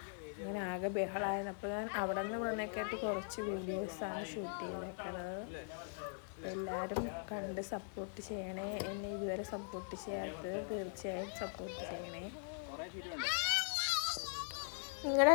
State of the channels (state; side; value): silent; right; digital silence